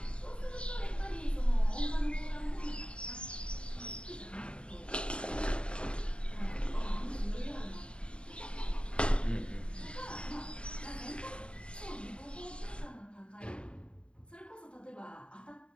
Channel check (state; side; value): late; right; 0.054 ms